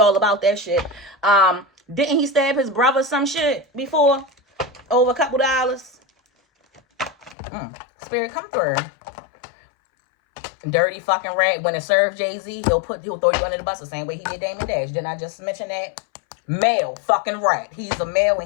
all about that shit. Didn't he stab his brother some shit before? Over a couple dollars. Spirit, come through. Dirty fucking rat. When it serves Jay-Z, he'll throw you under the bus the same way he did Damon Dash. Didn't I just mention that? Male fucking rat. He's a male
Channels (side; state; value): right; drops out; at 7.4 s